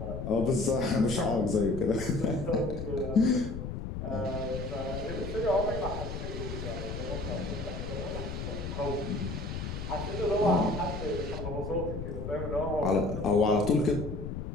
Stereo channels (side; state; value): left; noise; rumble, 6 dB below the sound